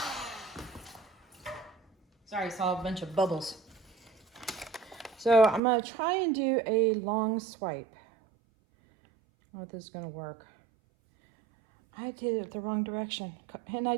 Sorry, I saw a bunch of bubbles. So I'm going to try and do a long swipe. I don't know if this is going to work. I did it the wrong direction. And I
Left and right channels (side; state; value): left; drops out; at 5.6 s